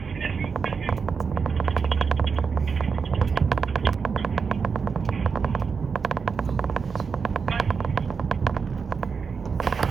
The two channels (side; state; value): left; quieter; 5.6 dB